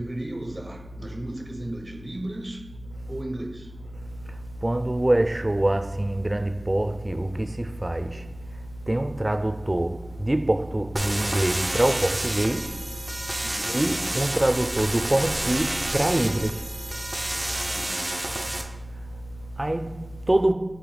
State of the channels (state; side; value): noise; left; hum, 19 dB below the sound